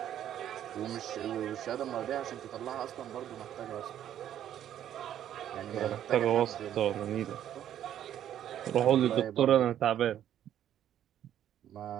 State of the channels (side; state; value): left; quieter; 10.8 dB